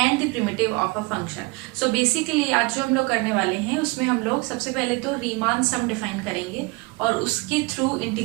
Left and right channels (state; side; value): quieter; left; 25.7 dB